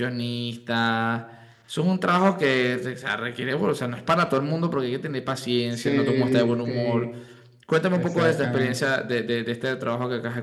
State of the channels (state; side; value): identical; both; correlation 1.00